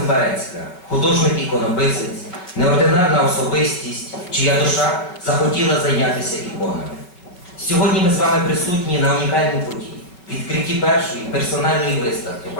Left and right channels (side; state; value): right; late; 5.4 ms